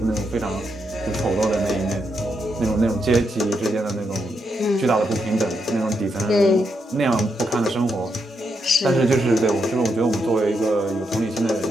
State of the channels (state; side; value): normal; both; correlation 0.81